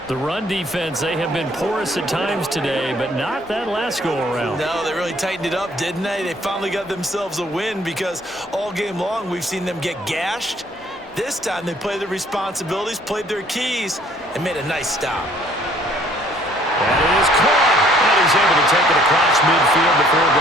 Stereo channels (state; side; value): normal; both; correlation 0.60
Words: The run defense, they have been porous at times today, but not that last go-around. No, they really tightened it up, didn't they? They finally got themselves a win, because all game long we've seen them get gashed. This time they played their responsibilities, played their keys, and made a nice stop. That is caught. And he's able to take it across midfield before